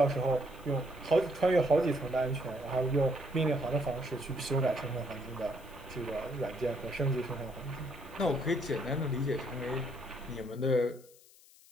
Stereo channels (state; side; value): noise; left; hiss, 25 dB below the sound